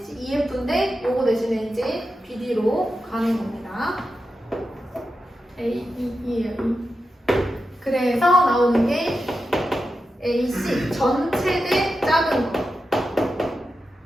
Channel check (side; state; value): both; normal; correlation 0.90